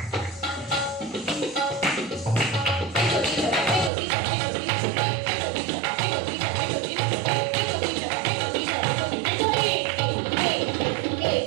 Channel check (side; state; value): left; drops out; at 3.9 s